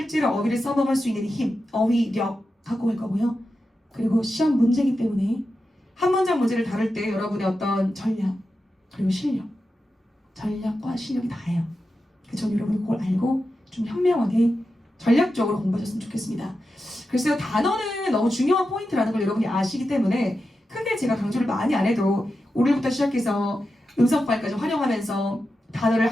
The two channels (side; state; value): both; normal; correlation 0.90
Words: 어휘를 써먹을 수 있는 힘, 어휘력 갖고 갈 거고요. 그리고 시험 문제이기 때문에 한 문장 문제를 다룰 때 여러분의 어떤 전략, 그리고 실력, 전략과 실력이 다예요. 그래서 저는 여러분이 그걸 알고 좀 현명하게 전략적으로 공부하셨으면 좋겠습니다. 글쎄요, 단어는 너무 중요한 포인트라는 걸 여러분이 아시기 때문에 크게 제가 강조를 많이 안 해도 오늘부터 시작해서 음성파일까지 활용하면서 단어를